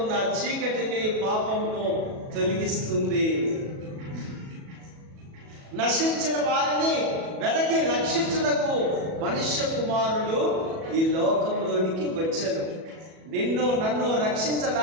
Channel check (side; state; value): left; late; 37 ms